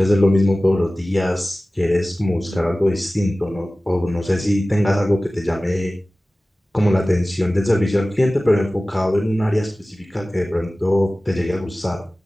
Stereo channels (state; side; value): normal; both; correlation 0.97